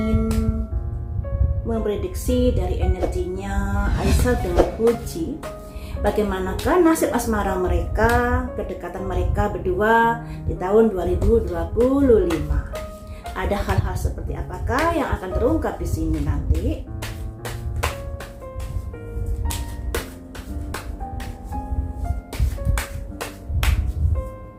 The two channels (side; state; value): both; identical; correlation 1.00